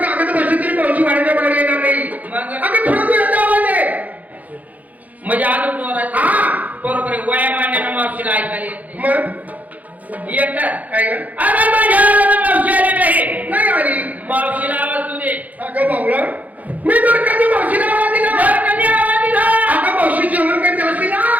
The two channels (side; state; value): left; late; 0.078 ms